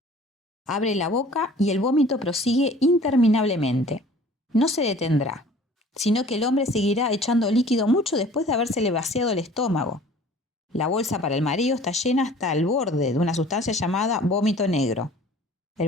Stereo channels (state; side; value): normal; both; correlation 0.49